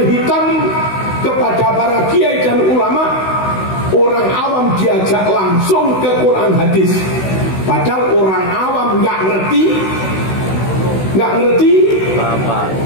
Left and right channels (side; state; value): right; late; 16 ms